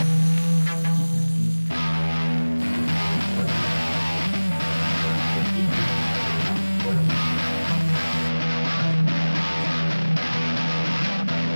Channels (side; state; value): both; inverted; correlation -1.00